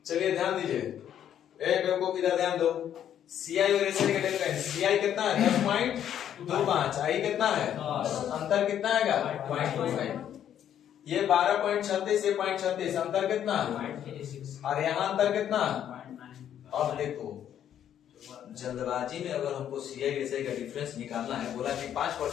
चलिए ध्यान दीजिए, बेवकूफ इधर ध्यान दो। सीआई और एसआई का डिफरेंस, सीआई कितना है? 10.25, आई कितना है? अंतर कितना आएगा? 0.25। ये 12.36, ये 0.36, अंतर कितना? और यहाँ अंतर कितना? अब देखो, जल्दबाजी में अगर हमको सीआई एसआई का डिफरेंस निकालना है, बोला कि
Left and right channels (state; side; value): quieter; right; 10.1 dB